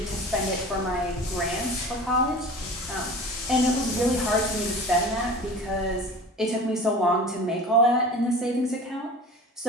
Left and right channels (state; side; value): normal; both; correlation 0.38